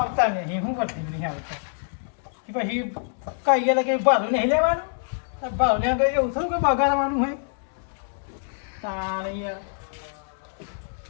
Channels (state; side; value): silent; right; 61 dB below the other